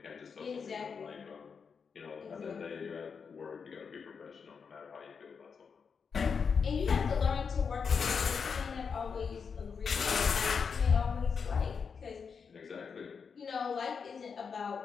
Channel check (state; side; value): quieter; right; 5.9 dB